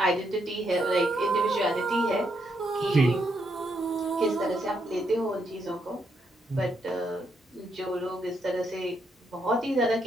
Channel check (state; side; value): normal; both; correlation 0.77